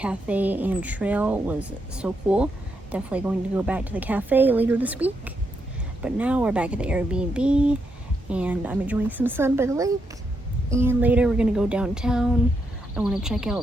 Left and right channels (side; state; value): both; normal; correlation 0.80